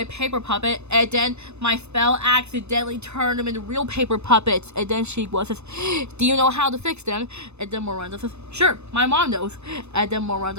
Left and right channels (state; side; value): late; left; 0.81 ms